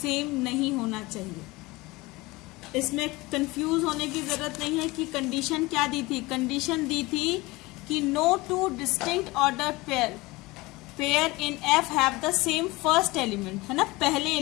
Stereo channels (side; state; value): right; quieter; 21.9 dB